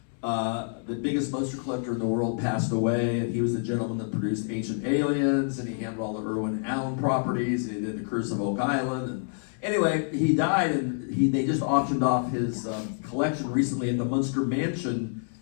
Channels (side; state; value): right; silent; 60 dB below the other